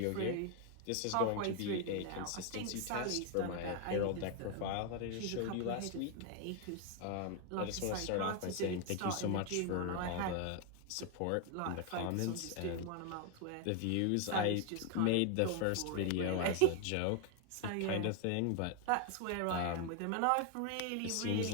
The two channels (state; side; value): different; both; correlation 0.00